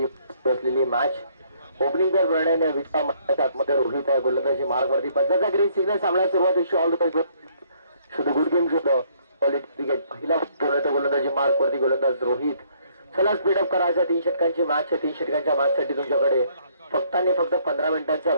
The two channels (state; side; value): inverted; both; correlation -0.65